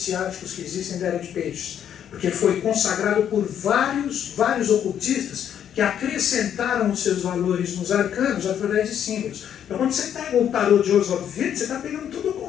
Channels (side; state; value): right; quieter; 9.4 dB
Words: que existem da Era de Peixes, porque foi consagrado por vários ocultistas que acrescentaram os seus valores nos arcanos através de símbolos. Então quando você pega o tarô de Oswald Wirth, você está pegando todo o